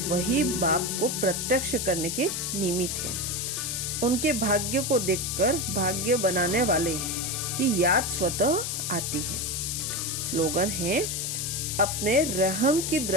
वही बाप को प्रत्यक्ष करने के निमित्त हैं। उनके भाग्य को देखकर भाग्य बनाने वाले की याद स्वतः आती है। स्लोगन है, अपने रहम की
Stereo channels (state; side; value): noise; left; hiss, 2 dB below the sound